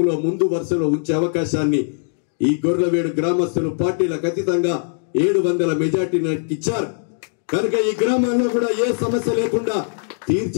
ముందు వరుసలో ఉంచే అవకాశాన్ని ఈ గోర్లవీడు గ్రామస్తులు పార్టీలకు అతీతంగా 700 మెజార్టీని ఇచ్చారు. కనుక ఈ గ్రామంలో కూడా ఏ సమస్య లేకుండా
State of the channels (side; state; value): right; silent; digital silence